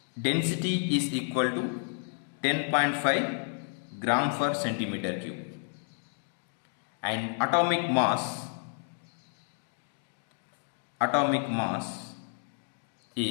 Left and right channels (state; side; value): silent; right; 57 dB below the other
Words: density is equal to 10.5 gram per centimeter cube, and atomic mass